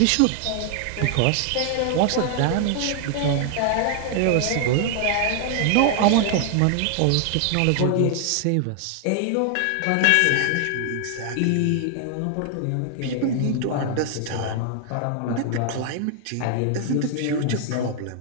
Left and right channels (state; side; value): different; both; correlation 0.00